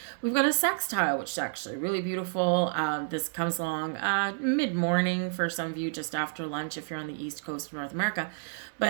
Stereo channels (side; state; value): left; silent; 58 dB below the other